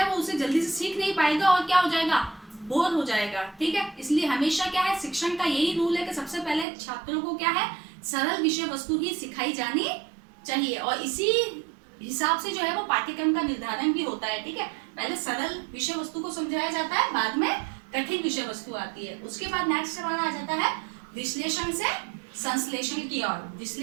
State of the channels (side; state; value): left; drops out; at 6.7 s